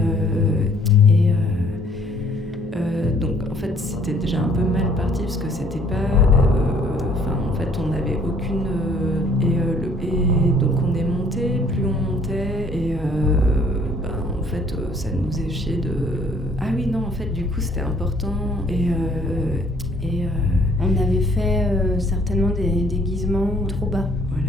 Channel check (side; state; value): both; normal; correlation 0.60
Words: donc en fait c'était déjà un peu mal parti parce que c'était pas en fait on n'avait aucune et donc on est monté, plus on montait et en fait ça nous faisait chier de ah oui non en fait du coup c'était important on avait fait certainement des déguisements trop bas.